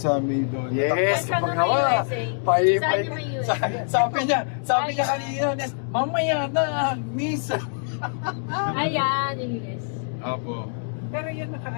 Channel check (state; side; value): silent; right; digital silence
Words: may doon. Yes, Saan pag yung nawa. USA? Pay, Saan yung USA? sabi niya kanina, Nes, mamaya na, miss. Ayan, yung US. Apo. Pero yun,